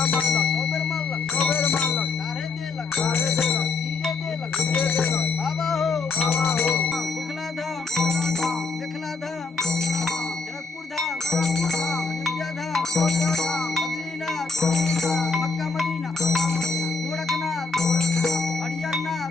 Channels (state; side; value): quieter; right; 4.2 dB